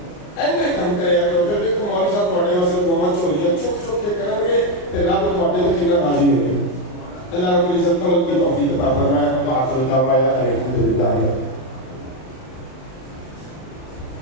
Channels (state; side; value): late; right; 39 ms